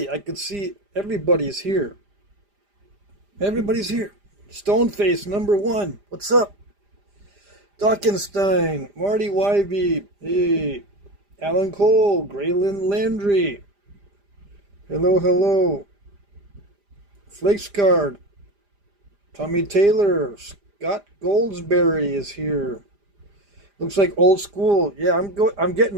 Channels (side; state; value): left; late; 5.0 ms